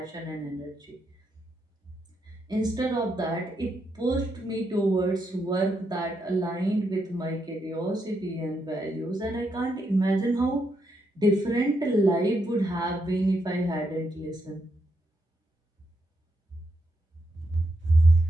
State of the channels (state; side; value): normal; both; correlation 0.81